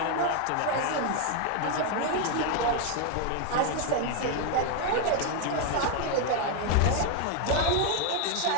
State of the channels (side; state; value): both; different; correlation 0.01